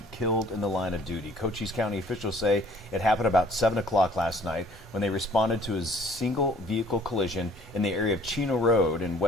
killed in the line of duty. Cochise County officials say it happened about 7 o'clock last night when they responded to a single vehicle collision in the area of Chino Road and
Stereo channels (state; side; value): normal; both; correlation 0.56